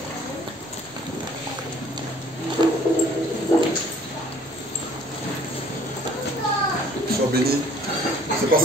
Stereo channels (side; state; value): both; normal; correlation 0.56